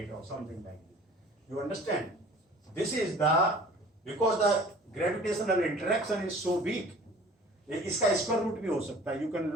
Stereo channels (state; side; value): normal; both; correlation 0.47